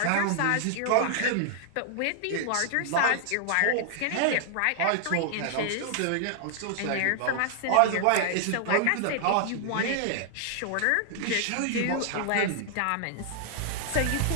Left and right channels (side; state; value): both; different; correlation 0.00